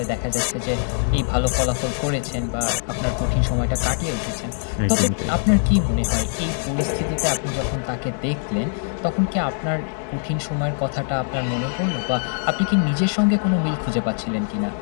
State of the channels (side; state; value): right; silent; 64 dB below the other